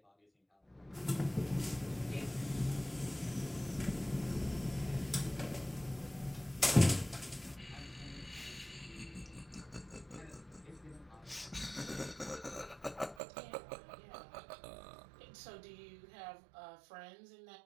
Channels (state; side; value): drops out; left; at 13.2 s